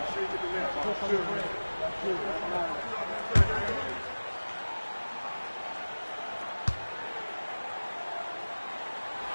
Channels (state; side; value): inverted; both; correlation -1.00